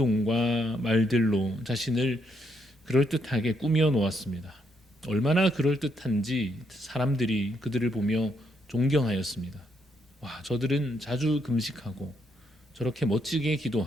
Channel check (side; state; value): both; normal; correlation 0.76